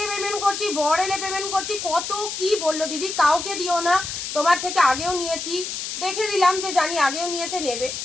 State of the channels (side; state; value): left; noise; hiss, 5 dB below the sound